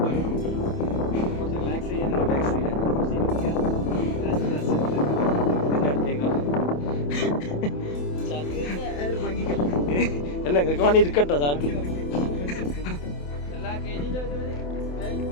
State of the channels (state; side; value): late; right; 28 ms